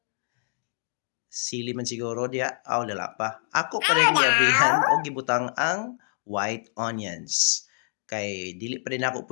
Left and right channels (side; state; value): right; silent; digital silence